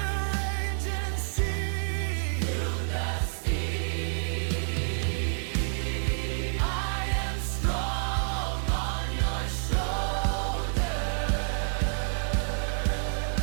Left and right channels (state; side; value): silent; left; digital silence